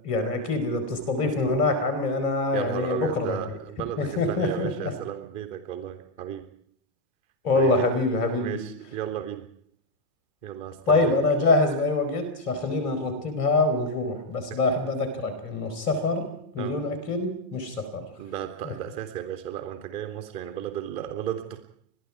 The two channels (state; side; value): late; right; 2.9 ms